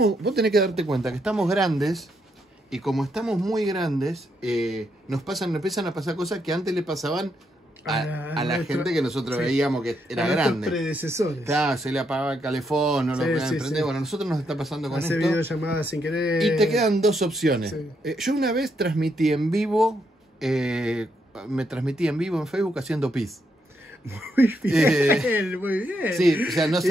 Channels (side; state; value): both; normal; correlation 0.78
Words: Vos tenés que darte cuenta que estamos grandes y como estamos muy grandes, nos empiezan a pasar cosas que antes le pasaban a la gente que nosotros veíamos que era grande. Predecesores. Claro, se le apagaba el calefón, no lo podían prender. Sí. Bueno, a nosotros nos está pasando con Hace esto. videollamadas sin querer. Y te quedan dos opciones. Sí. Yo una vez transmití en vivo, me transmití en vivo en Facebook haciendo pis. Muy bien, muy bien. Sí, o sea, no